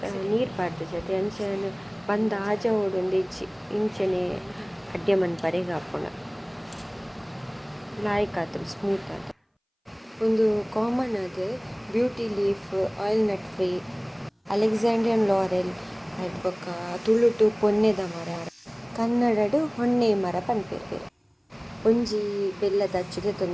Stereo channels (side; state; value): both; identical; correlation 1.00